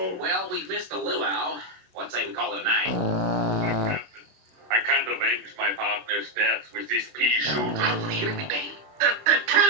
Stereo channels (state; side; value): late; left; 27 ms